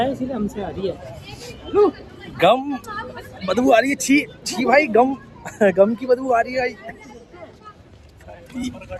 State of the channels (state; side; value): identical; both; correlation 1.00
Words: है इसीलिए हमसे आ रही है। गम बदबू आ रही है। छी छी भाई, गम की बदबू आ रही है भाई।